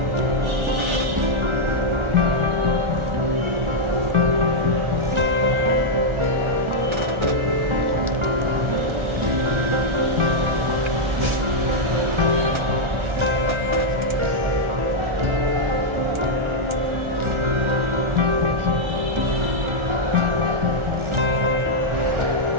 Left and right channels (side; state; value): left; late; 1.4 ms